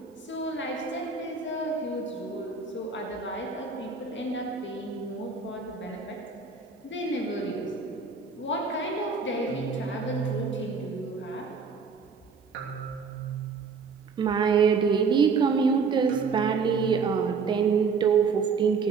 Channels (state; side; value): quieter; left; 5.1 dB